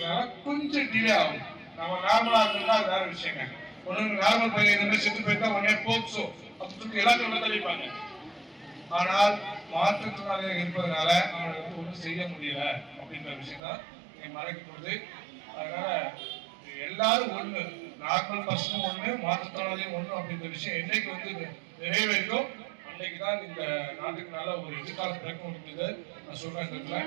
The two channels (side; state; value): left; drops out; at 13.6 s